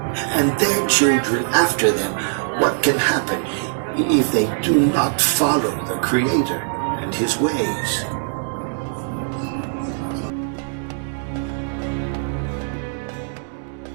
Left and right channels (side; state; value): left; silent; digital silence